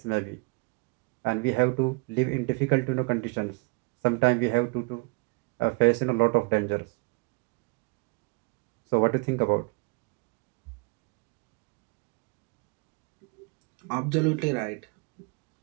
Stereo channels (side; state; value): left; quieter; 28.2 dB